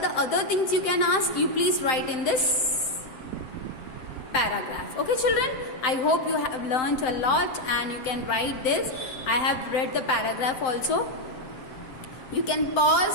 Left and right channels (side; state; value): right; late; 7.8 ms